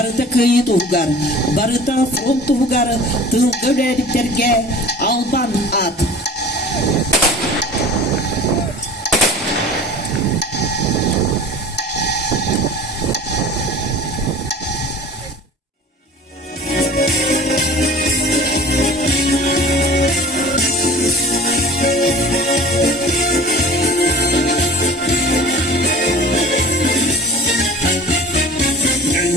кыйытуугар, барыта фронтуугар тылгөлериктерге албан ат.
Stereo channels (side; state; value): both; normal; correlation 0.41